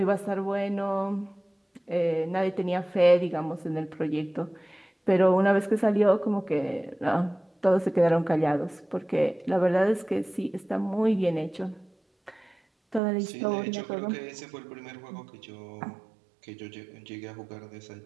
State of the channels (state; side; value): drops out; left; at 13.0 s